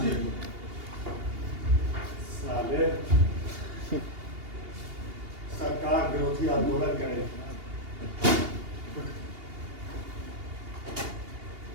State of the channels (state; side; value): late; left; 2.8 ms